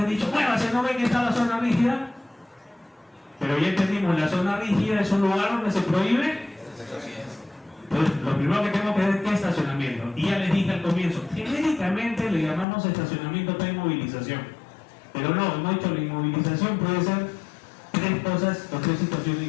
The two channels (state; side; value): drops out; right; at 12.7 s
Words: he dicho, bueno, si no ven que está la zona rígida, pero ya entendimos, la zona rígida es un lugar donde se prohíbe. Entonces, lo primero que tengo que ver es qué estacionamiento. Y ya les dije al comienzo, genéricamente le llamamos estacionamiento para inmovilización. Pero no, hemos dicho la inmovilización puede ser tres cosas o tres situaciones